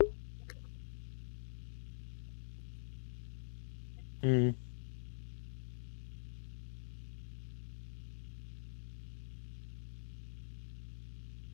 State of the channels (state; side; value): silent; right; digital silence